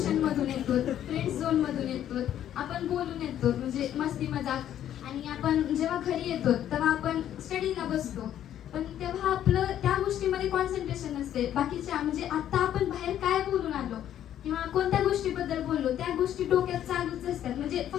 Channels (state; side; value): quieter; right; 11.0 dB